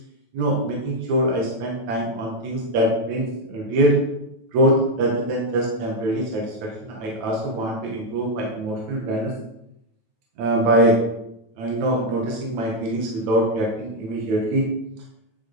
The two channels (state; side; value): late; left; 9.1 ms